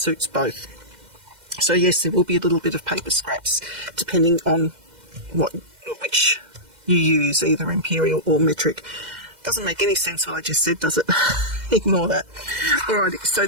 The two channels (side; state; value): left; late; 2.1 ms